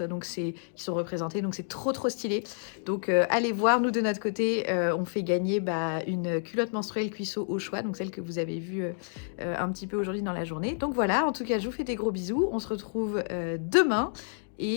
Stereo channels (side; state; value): right; silent; digital silence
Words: qui sont représentées. Donc c'est trop stylé. Donc allez voir, nous de notre côté, on fait gagner une culotte menstruelle Cuissot au choix, donc celle que vous avez vue un petit peu aujourd'hui dans la journée. Donc voilà, en tout cas je vous fais des gros bisous. On se retrouve demain